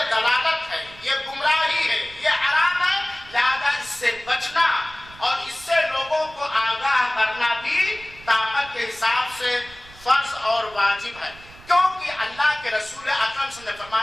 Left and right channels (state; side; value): noise; right; rumble, 21 dB below the sound